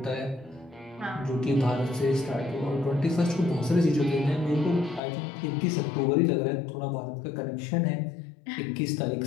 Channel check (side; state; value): right; drops out; at 5.0 s